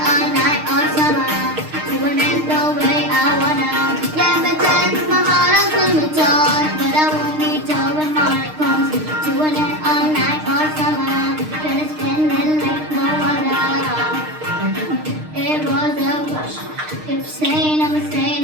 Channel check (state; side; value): late; left; 6.5 ms